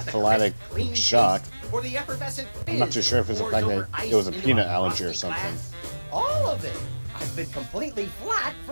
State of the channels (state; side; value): inverted; both; correlation -1.00